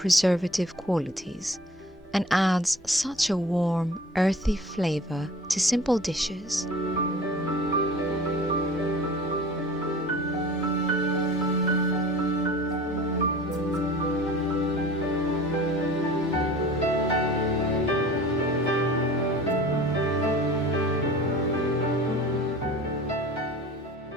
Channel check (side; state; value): both; normal; correlation 0.43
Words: qualities and adds such a warm, earthy flavor to simple dishes.